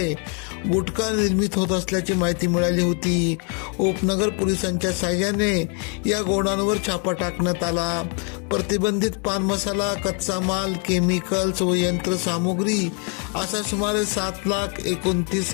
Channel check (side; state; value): right; quieter; 38.0 dB